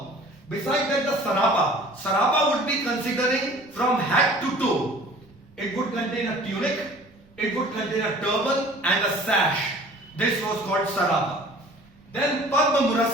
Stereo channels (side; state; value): right; noise; rumble, 29 dB below the sound